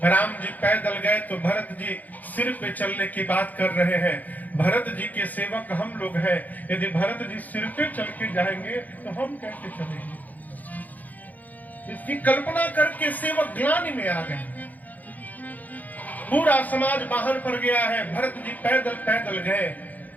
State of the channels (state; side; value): late; right; 0.081 ms